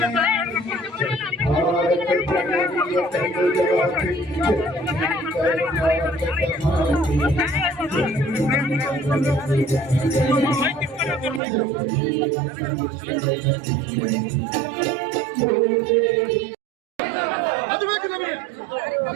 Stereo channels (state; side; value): drops out; left; at 11.4 s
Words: ಅದು ಬೇಕು ನಮಗೆ.